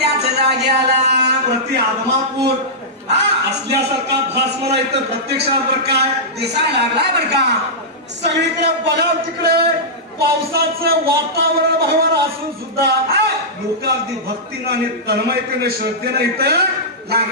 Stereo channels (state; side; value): normal; both; correlation -0.13